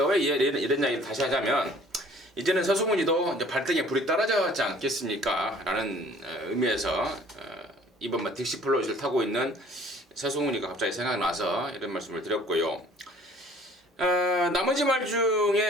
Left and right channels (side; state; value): both; normal; correlation 0.53